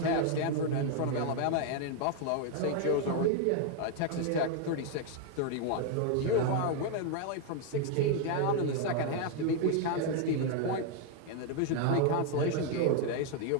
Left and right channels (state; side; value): different; both; correlation 0.01